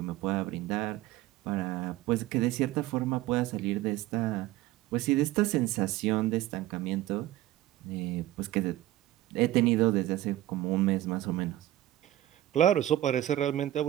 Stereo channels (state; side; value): quieter; left; 14.8 dB